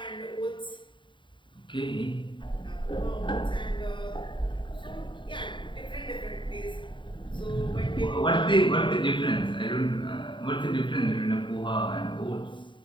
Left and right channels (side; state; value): right; late; 0.23 ms